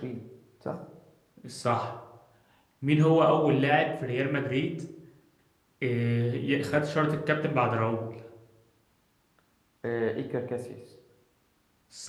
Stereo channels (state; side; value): identical; both; correlation 1.00